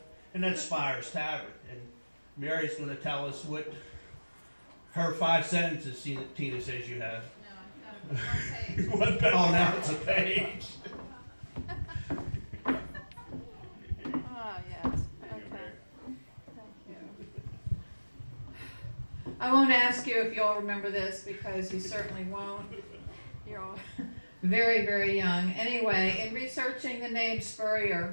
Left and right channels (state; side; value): inverted; both; correlation -1.00